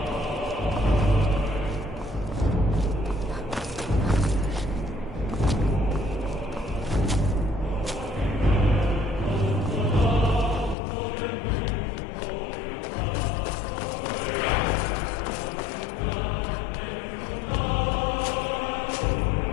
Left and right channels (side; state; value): right; drops out; at 10.8 s